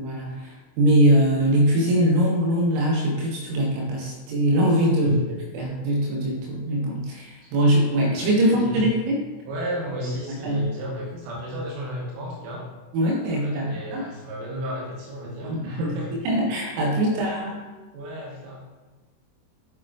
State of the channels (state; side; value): late; left; 24 ms